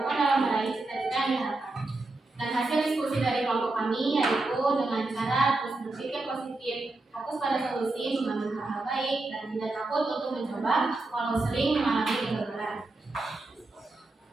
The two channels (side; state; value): left; quieter; 3.1 dB